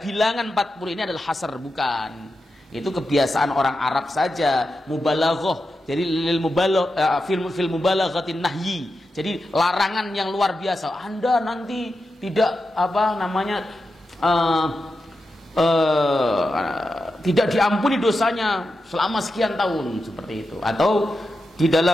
bilangan 40 ini adalah hasr, bukan. Itu kebiasaan orang Arab saja, mubalaghah. Jadi lil mubalagh fil mubalaghatin nahyi. Jadi larangan yang luar biasa. Anda nanti tidak tidak diampuni dosanya selama sekian tahun, seperti itu. Atau di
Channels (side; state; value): both; normal; correlation 0.89